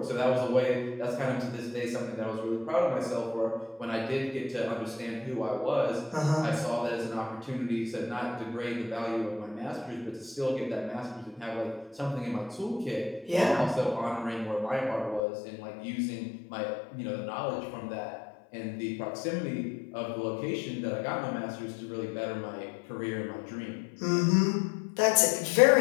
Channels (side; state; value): right; drops out; at 15.2 s